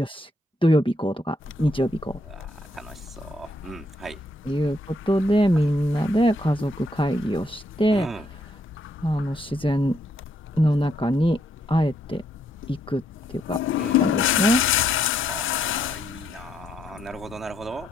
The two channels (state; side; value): normal; both; correlation 0.73